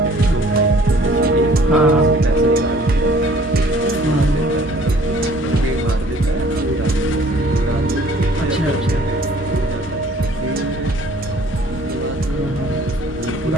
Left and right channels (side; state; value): both; normal; correlation 0.54